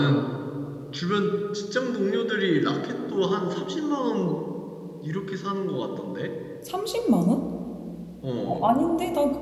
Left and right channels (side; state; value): both; identical; correlation 1.00